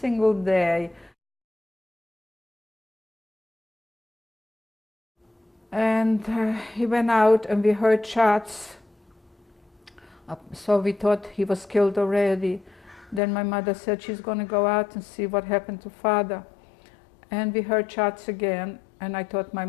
day. And he went out and we heard shots, so we thought he was killed already. Then my mother said she's going to go out and see what happened to father. And we heard shots again, and I thought my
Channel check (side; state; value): right; drops out; at 13.2 s